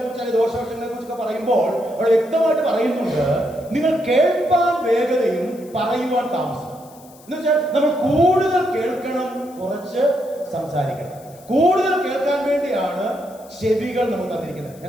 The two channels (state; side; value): noise; left; hiss, 25 dB below the sound